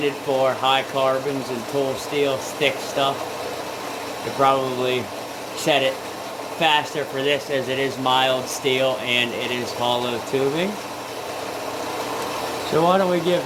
for high carbons and tool steel thick stuff. You probably set it faster for this, as it is mild steel and it is hollow tubing. So why don't we give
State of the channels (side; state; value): both; identical; correlation 1.00